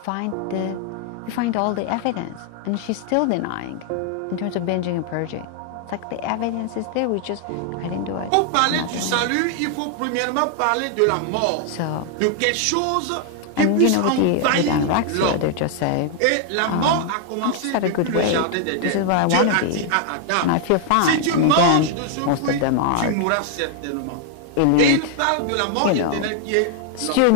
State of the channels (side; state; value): both; different; correlation 0.00